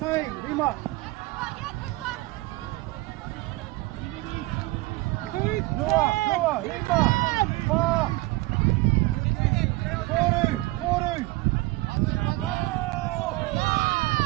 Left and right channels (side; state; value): left; quieter; 20.7 dB